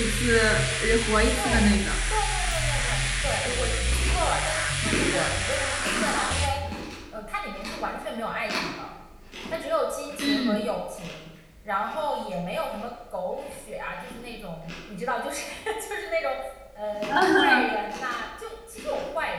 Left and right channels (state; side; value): identical; both; correlation 1.00